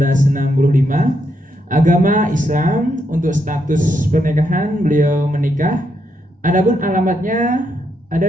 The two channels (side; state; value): both; normal; correlation 0.79